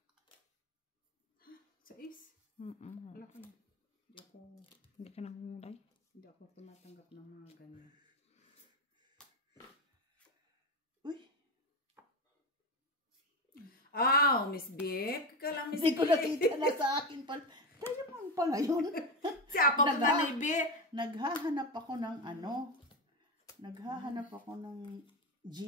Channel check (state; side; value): normal; both; correlation 0.17